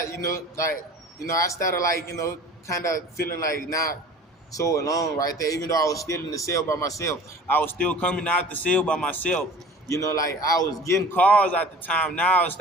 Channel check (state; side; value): normal; both; correlation 0.44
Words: I started like, kind of feeling like not so alone right there. Even though I was still in the cell by myself, I was still coming out the cell by myself. Like I was getting calls at the time. Now I